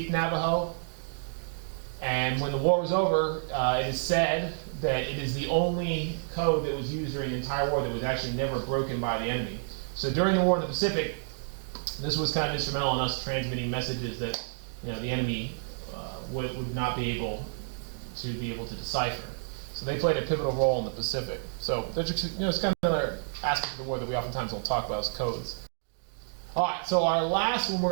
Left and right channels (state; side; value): silent; left; digital silence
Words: Navajo. And when the war was over, it is said that it is the only code that was used during the entire war that was actually never broken by the enemy. So during the war in the Pacific, this was kind of instrumental in us transmitting messages that the enemy would not be able to decipher. So they played a pivotal role in the Pacific. So it's kind of another aspect of the war that we oftentimes don't talk about is codes. All right, so our last one